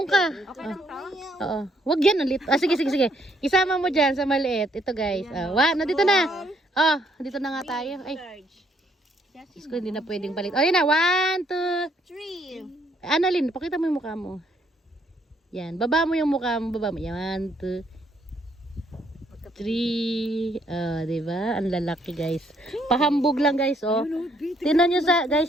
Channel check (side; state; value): both; normal; correlation 0.69